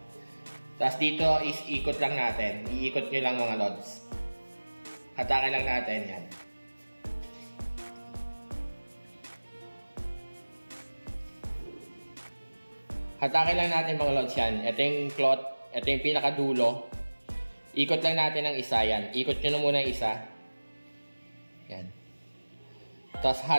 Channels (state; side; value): inverted; both; correlation -1.00